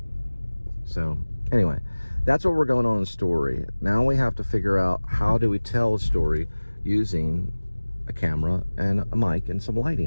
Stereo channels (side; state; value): both; inverted; correlation -1.00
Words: So anyway, that's what we're going on in the story. Now we have to figure out, how do we tell a story using a camera and a mic and some lighting